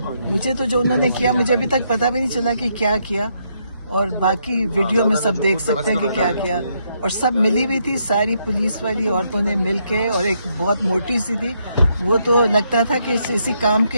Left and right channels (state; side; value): inverted; both; correlation -0.76